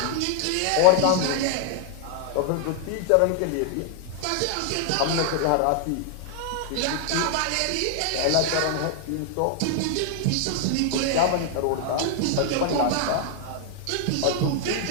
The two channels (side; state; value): both; different; correlation 0.00